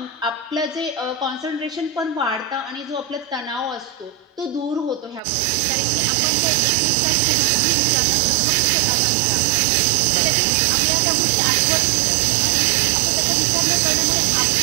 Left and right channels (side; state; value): left; drops out; at 5.2 s